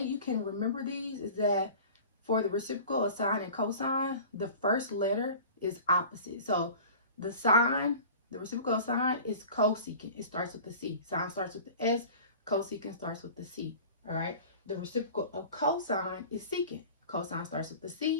can remember these is that for the reciprocal of sine and cosine, the first letter is opposite. So the sine, the reciprocal of sine is cosecant. It starts with the C. Sine starts with the S. Cosecant starts with the C. All right. The reciprocal of cosine is secant. Cosine starts with the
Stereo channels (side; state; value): both; inverted; correlation -0.40